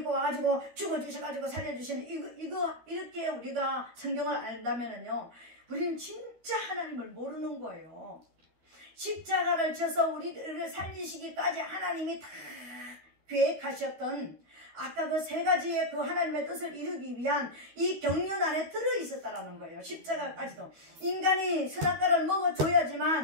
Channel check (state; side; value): late; left; 13 ms